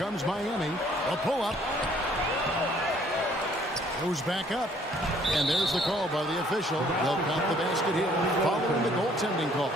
Miami. A pull-up. Goes back up. And there's the call by the official. They'll count the basket here following the goaltending call.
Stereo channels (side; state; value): both; normal; correlation 0.61